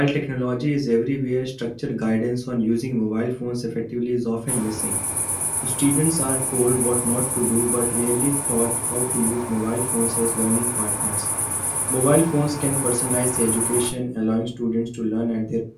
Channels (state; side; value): identical; both; correlation 1.00